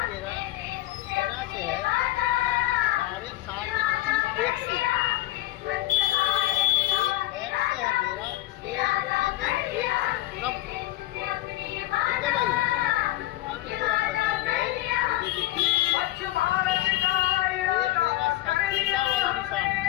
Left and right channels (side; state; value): right; quieter; 16.6 dB